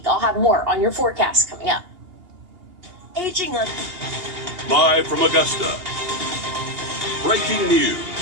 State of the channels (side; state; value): left; late; 2.8 ms